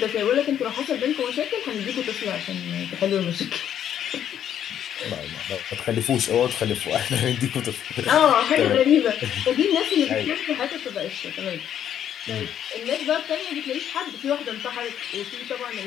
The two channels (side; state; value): right; quieter; 9.9 dB